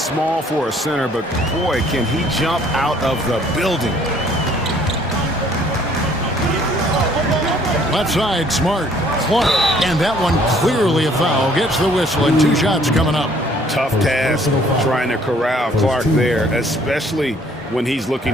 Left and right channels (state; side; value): normal; both; correlation 0.60